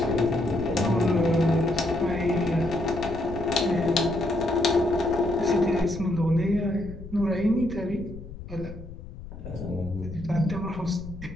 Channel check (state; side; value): noise; left; rumble, 13 dB below the sound